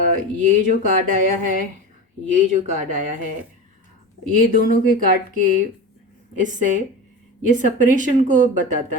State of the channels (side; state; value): both; normal; correlation 0.28